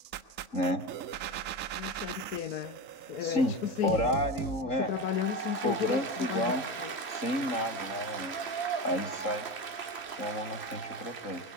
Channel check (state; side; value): late; right; 3.0 ms